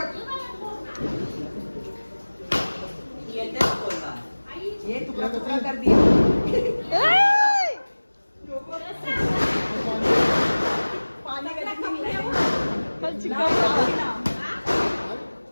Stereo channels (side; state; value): both; inverted; correlation -1.00